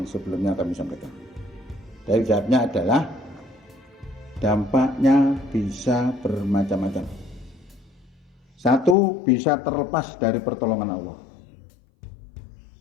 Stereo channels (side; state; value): right; drops out; at 9.0 s